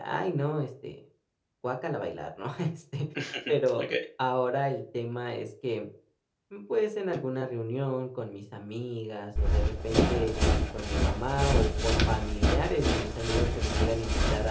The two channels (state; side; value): identical; both; correlation 1.00